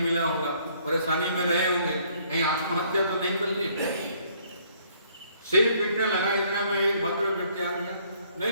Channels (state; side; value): inverted; both; correlation -0.64